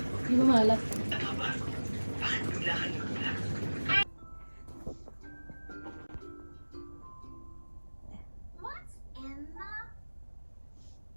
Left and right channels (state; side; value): inverted; both; correlation -1.00